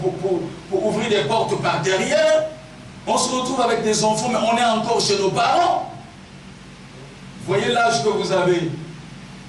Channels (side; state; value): both; identical; correlation 1.00